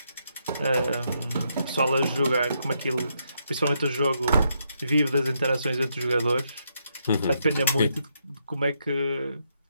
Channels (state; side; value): inverted; both; correlation -0.78